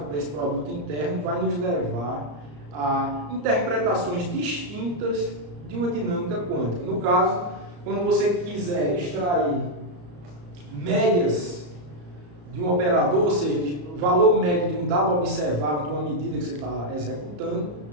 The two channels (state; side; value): late; left; 34 ms